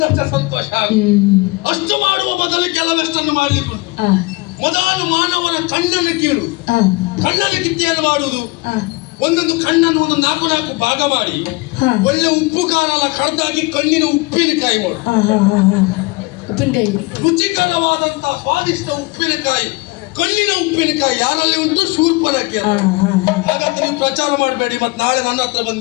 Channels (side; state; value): right; quieter; 24.3 dB